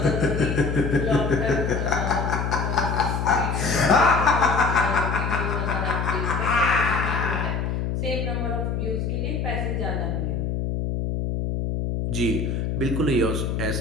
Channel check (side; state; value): left; noise; hum, 1 dB below the sound